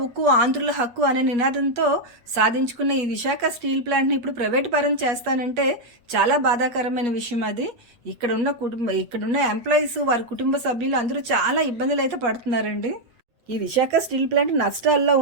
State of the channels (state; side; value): late; left; 8.4 ms